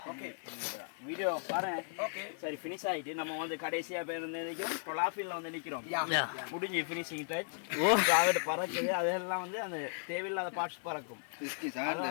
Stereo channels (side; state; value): right; silent; 54 dB below the other